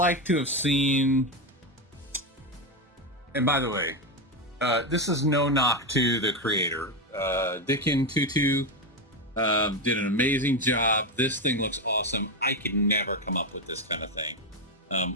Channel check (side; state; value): both; normal; correlation 0.11